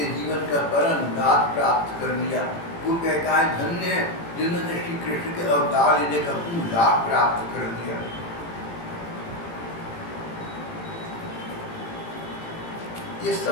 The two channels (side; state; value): right; late; 18 ms